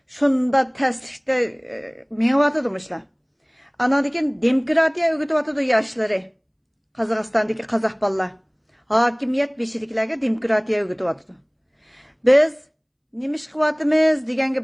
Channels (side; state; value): both; identical; correlation 1.00